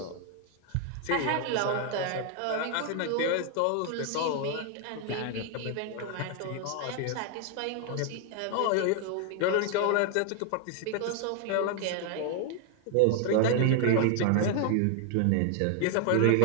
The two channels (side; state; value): both; different; correlation 0.00